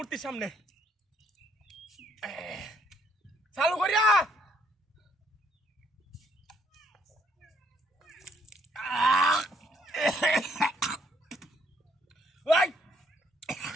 সামনে চালু করিয়া Woi,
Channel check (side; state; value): both; normal; correlation 0.68